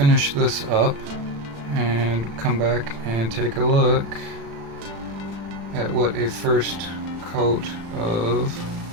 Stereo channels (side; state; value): left; late; 35 ms